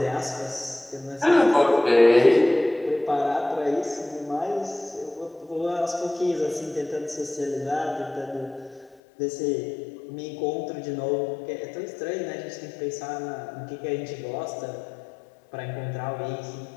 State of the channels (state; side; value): drops out; right; at 9.0 s